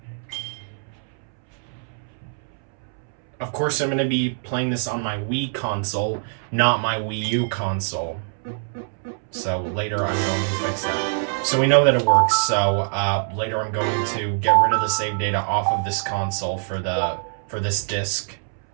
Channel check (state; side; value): silent; left; 63 dB below the other